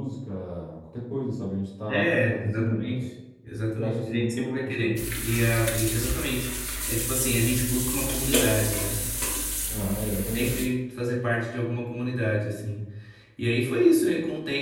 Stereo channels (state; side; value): identical; both; correlation 1.00